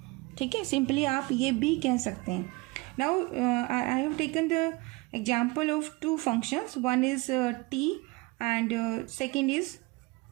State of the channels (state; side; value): quieter; left; 24.2 dB